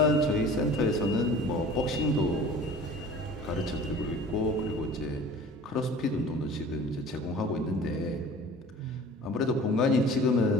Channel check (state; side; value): normal; both; correlation 0.44